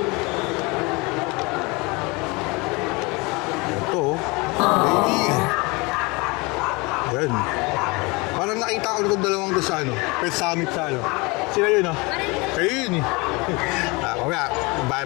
Yan. Parang nakita ko itong dalawang to sa Pet Summit sa Sila yun Kayo yun Kaya,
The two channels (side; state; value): right; quieter; 26.3 dB